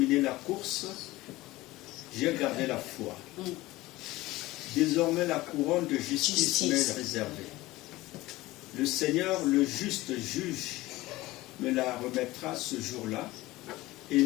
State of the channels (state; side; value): quieter; right; 18.6 dB